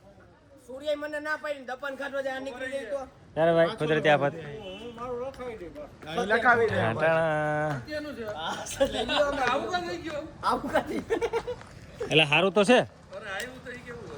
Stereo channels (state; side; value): identical; both; correlation 1.00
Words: સૂર્ય મને ના પાડી દપન ખાટો જાય નીકળી જાય તો. ત્યારે ભાઈ કુદરતી આફત. લખાવી દે ટાણા. કેનું છે લઈ લ્યો અમે. આવું કા થઈ ગયો આવું કાથી. એટલે સારું તો છે. અરે આવ્યું તો ઈ કેવું